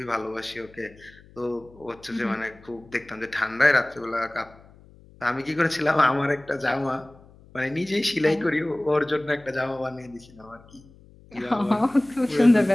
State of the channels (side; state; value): left; noise; hum, 25 dB below the sound